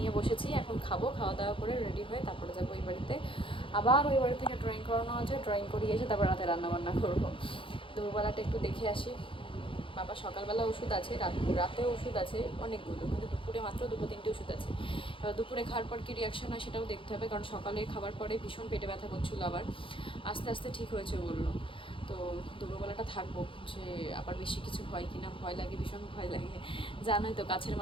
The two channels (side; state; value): right; late; 0.25 ms